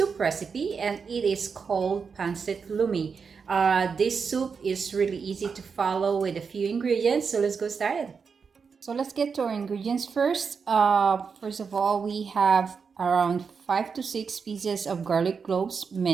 recipe and it is called Pancit Lomi. This soup is really easy to follow with a few ingredients, so let's go started. So let's get to our ingredients first. First of all, we have around 5 to 6 pieces of garlic cloves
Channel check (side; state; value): left; quieter; 5.7 dB